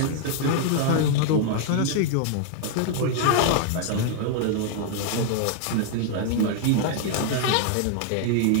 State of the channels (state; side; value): different; both; correlation 0.00